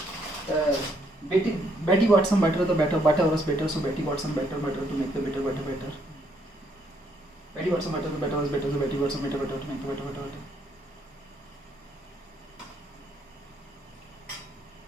Betty got some butter, the butter was better, so Betty got some butter to make the butter better. Betty got some butter, the butter was better, so Betty got some butter to make the butter better.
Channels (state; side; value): normal; both; correlation 0.71